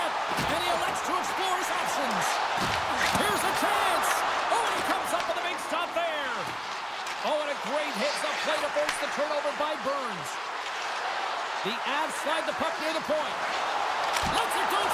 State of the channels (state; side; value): identical; both; correlation 1.00